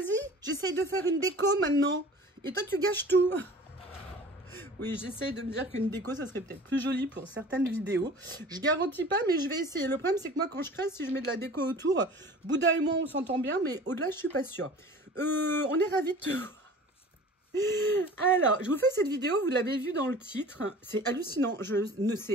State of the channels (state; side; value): normal; both; correlation 0.42